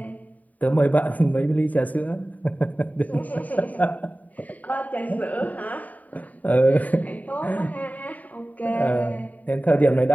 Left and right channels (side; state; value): right; late; 0.074 ms